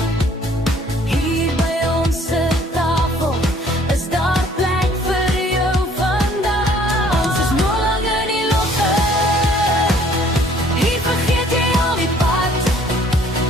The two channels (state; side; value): normal; both; correlation 0.58